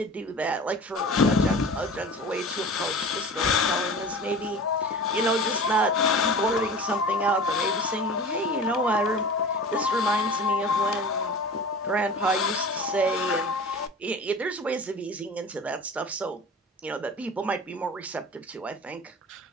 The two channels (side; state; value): both; normal; correlation 0.37